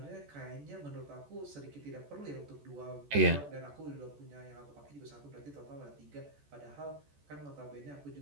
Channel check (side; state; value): left; late; 14 ms